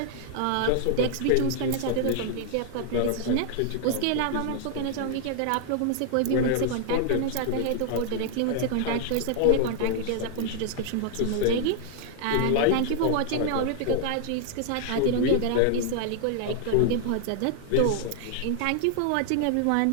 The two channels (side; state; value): both; different; correlation 0.00